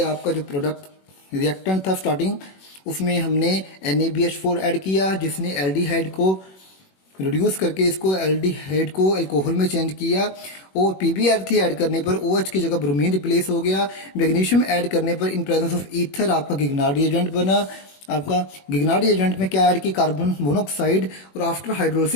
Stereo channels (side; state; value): right; late; 21 ms